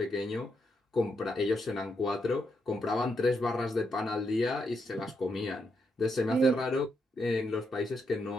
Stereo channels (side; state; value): both; normal; correlation 0.81